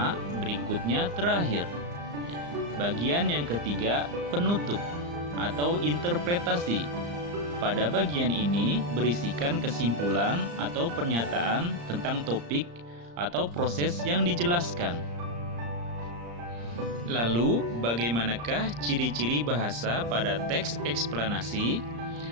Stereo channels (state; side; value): late; left; 34 ms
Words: berikutnya terakhir. Bagian yang ketiga, penutup atau interpretasi. Pada bagian ini berisikan kesimpulan atau pernyataan tentang topik atau proses yang dijelaskan. Lalu, bagaimanakah ciri-ciri bahasa pada teks eksplanasi?